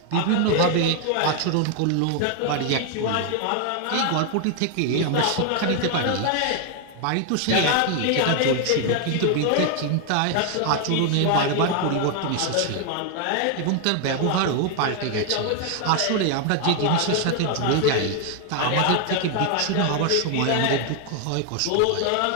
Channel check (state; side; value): different; both; correlation 0.00